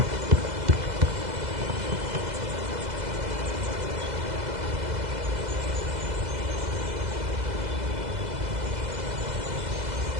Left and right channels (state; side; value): late; left; 2.0 ms